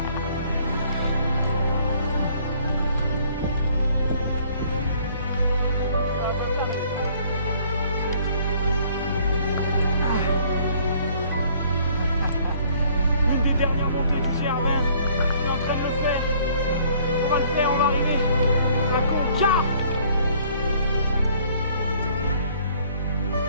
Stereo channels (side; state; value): both; inverted; correlation -0.59